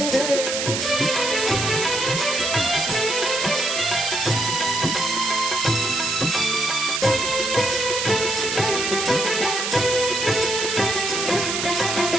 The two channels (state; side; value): noise; right; hiss, 1 dB below the sound